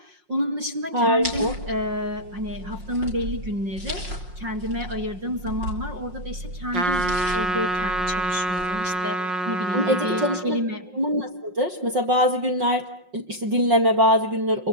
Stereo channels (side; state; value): left; late; 5.5 ms